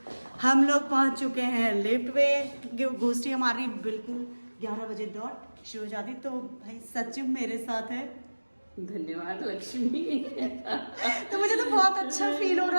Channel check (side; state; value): both; inverted; correlation -1.00